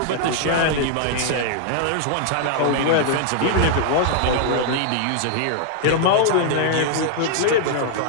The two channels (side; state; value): both; different; correlation -0.01